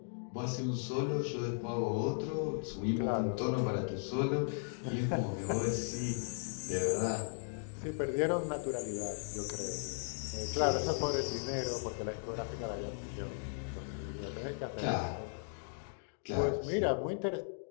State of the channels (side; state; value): right; silent; digital silence